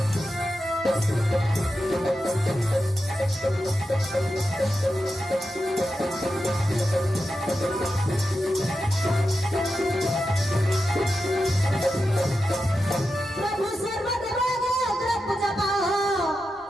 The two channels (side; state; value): both; normal; correlation 0.89